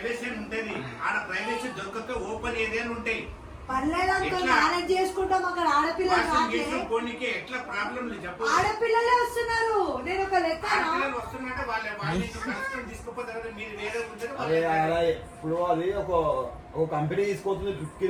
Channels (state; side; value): identical; both; correlation 1.00